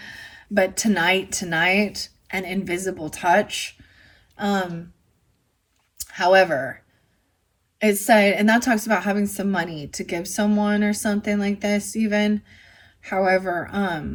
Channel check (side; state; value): both; identical; correlation 1.00